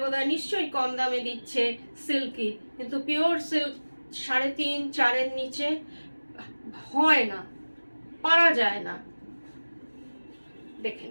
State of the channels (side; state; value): both; inverted; correlation -1.00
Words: বোধহয় নিশ্চয়ই কম দামে দিচ্ছে সিল্কি, কিন্তু পিওর সিল্ক 3.5-4 নিচে হয় না, পারা যায় না। দেখে